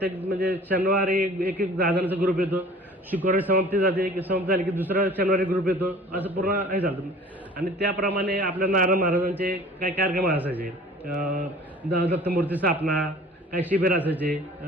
म्हणजे शनिवारी एक 10 जणांचा ग्रुप येतो. शुक्रवारी समाप्ती जाते की समाप्ती झाली की दुसरा शनिवारी ग्रुप येतो. असं पूर्ण हे चालतं. आणि त्याप्रमाणे आपल्या नारायण महाराजांचे काही कार्यक्रम असायचे. दत्तमूर्ती स्थापना, काही शिबिर असायचे.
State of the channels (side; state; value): both; normal; correlation 0.46